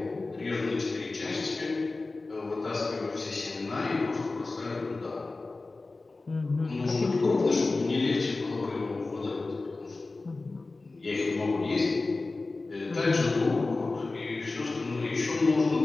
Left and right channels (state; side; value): quieter; right; 3.5 dB